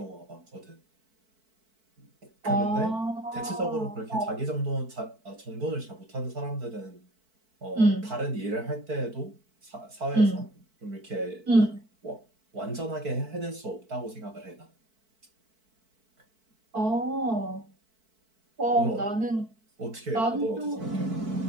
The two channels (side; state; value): left; late; 4.5 ms